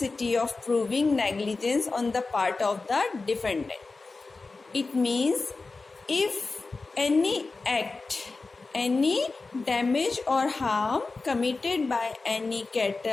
of proving negligence on the part of the defendant. It means if any act, any damage or harm committed by any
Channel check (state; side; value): quieter; right; 3.8 dB